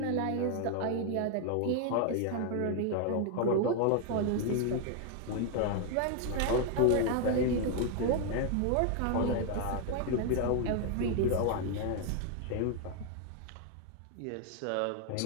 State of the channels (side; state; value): both; different; correlation 0.00